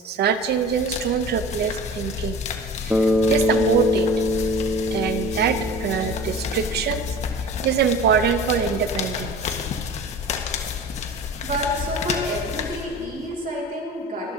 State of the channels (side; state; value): both; normal; correlation 0.38